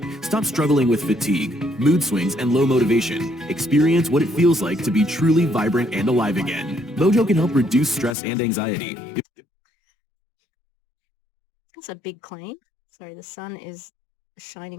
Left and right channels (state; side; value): drops out; right; at 8.2 s